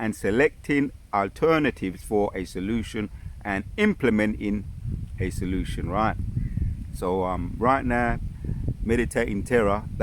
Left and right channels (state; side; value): identical; both; correlation 1.00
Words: selecting alternatives for a solution, and implementing a solution, right? So right now, meditating terror,